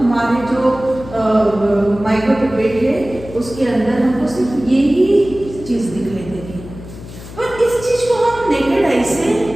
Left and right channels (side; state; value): left; noise; hum, 15 dB below the sound